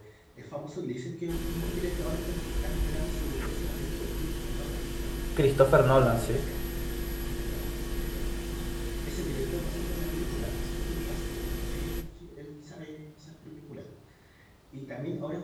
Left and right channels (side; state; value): both; identical; correlation 1.00